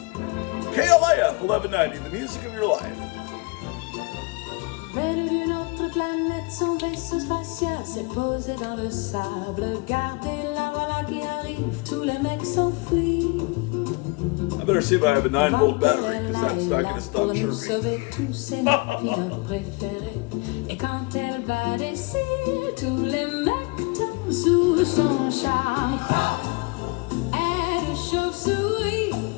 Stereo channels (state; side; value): quieter; right; 27.9 dB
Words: KLIF 1190, the music of your life. Venu d'une autre planète, son vaisseau spatial s'est posé dans le sable. Gardez la voilà qui arrive, tous les mecs s'enfuient. I better see if I have a 9-volt battery, because that's not going to stop Pour nous chirping. sauver tous ses napines préférés. Et quand elle va d'ici, tous les mecs tombent sous son charme. Elle est chauve-souris,